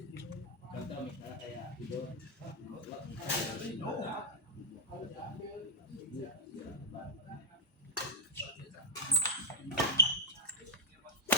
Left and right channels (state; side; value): normal; both; correlation -0.07